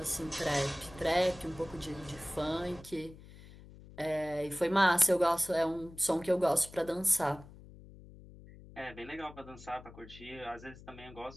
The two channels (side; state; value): left; noise; hum, 18 dB below the sound